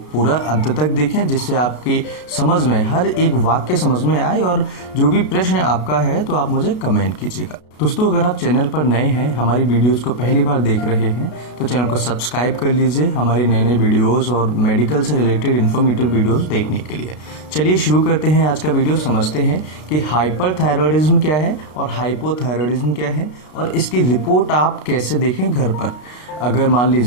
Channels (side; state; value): right; late; 33 ms